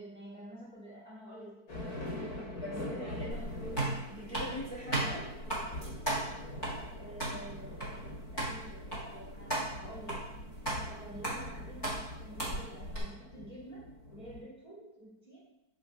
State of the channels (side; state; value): right; late; 4.5 ms